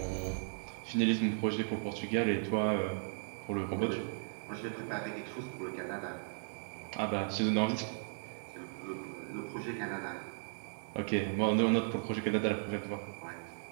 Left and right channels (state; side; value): silent; left; digital silence